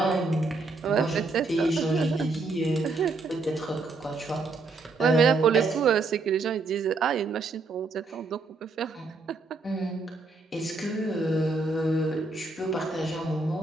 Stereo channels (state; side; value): quieter; left; 3.6 dB